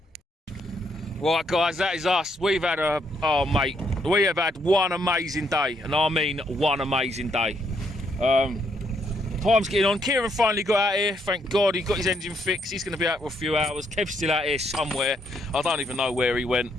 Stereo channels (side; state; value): both; normal; correlation 0.73